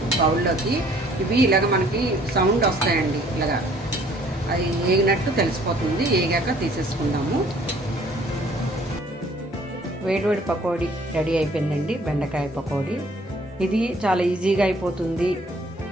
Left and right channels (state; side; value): normal; both; correlation 0.58